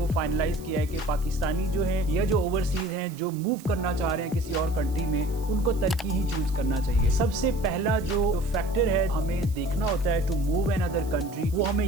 फाइनलाइज किया है कि पाकिस्तानी जो है या जो ओवरसीज हैं जो मूव करना चाह रहे हैं किसी और कंट्री में, उनको तुर्की ही चूज करना चाहिए। सबसे पहला जो फैक्टर है हमें देखना होता है to move another country, वो हमें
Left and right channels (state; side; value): noise; right; hiss, 21 dB below the sound